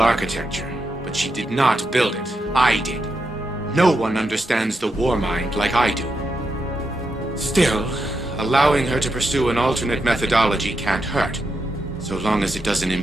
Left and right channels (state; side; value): normal; both; correlation 0.84